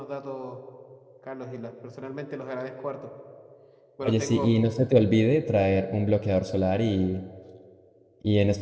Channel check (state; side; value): identical; both; correlation 1.00